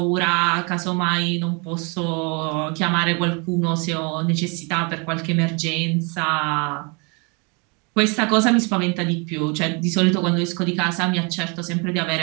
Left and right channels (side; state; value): left; quieter; 32.4 dB